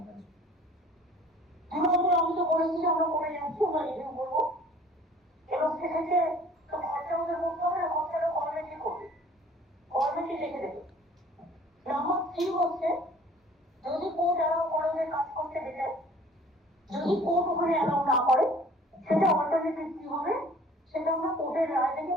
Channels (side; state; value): both; normal; correlation 0.51